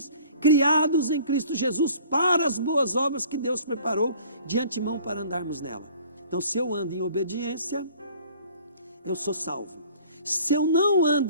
criados em Cristo Jesus para as boas obras que Deus preparou de antemão para andarmos nela. Então, se eu ando em obediência, eu sou salvo. Se eu não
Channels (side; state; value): both; inverted; correlation -0.51